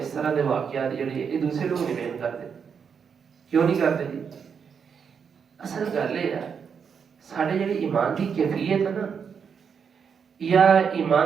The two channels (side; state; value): left; quieter; 6.7 dB